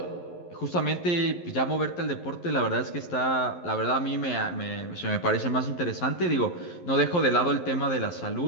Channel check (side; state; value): right; late; 11 ms